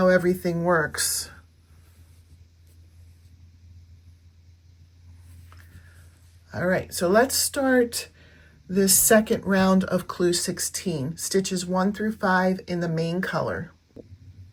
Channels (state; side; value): identical; both; correlation 1.00